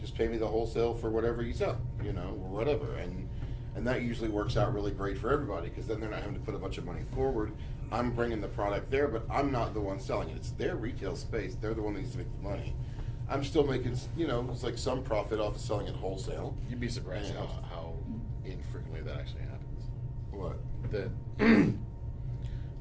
pay me the wholesale for whatever you sell, you know, or whatever. And that usually works out really great for everybody, because then they're not having to put a bunch of money forward. I'm bringing the product there, but I'm not the one selling it. It's their retail space. They're the one that needs to make the money. I'm still making, you know, it's like some profit off of selling it wholesale. You'd be surprised Yeah. how infrequently that actually happens. What? That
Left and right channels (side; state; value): both; identical; correlation 1.00